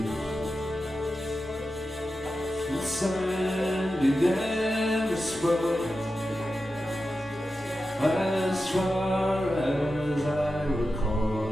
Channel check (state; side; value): normal; both; correlation 0.91